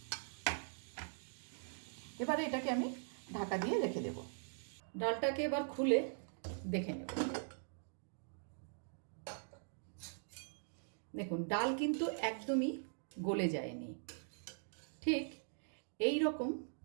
এবারে এটাকে আমি ঢাকা দিয়ে রেখে দেব। ডালটাকে এবার খুলে দেখে নেব। দেখুন, ডাল কিন্তু একদমই গলে যায়নি, ঠিক এই রকম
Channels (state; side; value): silent; left; digital silence